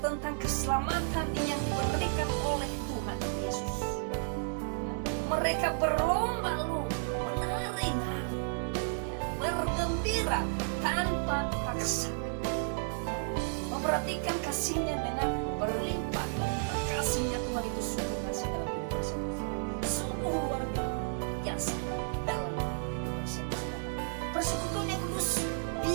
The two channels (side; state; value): left; silent; digital silence